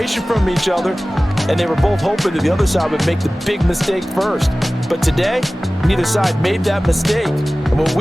from each other, and they were both hoping that the other side would make the big mistake first. But today, neither side made that mistake. And what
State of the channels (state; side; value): normal; both; correlation 0.97